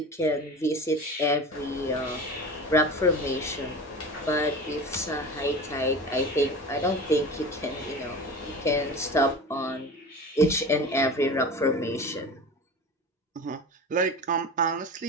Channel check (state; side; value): normal; both; correlation 0.33